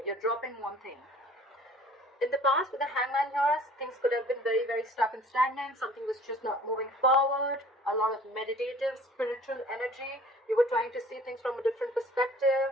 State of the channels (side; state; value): both; normal; correlation 0.50